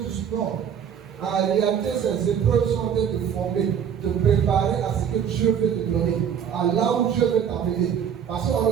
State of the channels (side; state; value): left; quieter; 8.2 dB